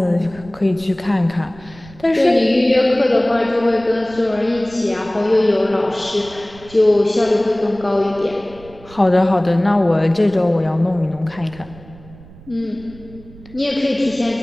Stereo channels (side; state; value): right; noise; rumble, 21 dB below the sound